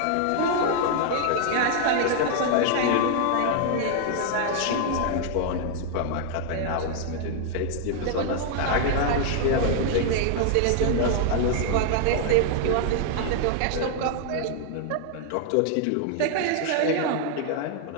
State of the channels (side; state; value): both; different; correlation 0.00